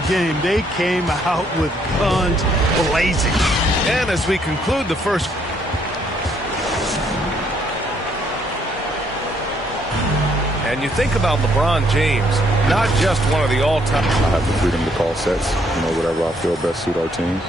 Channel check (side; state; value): both; normal; correlation 0.69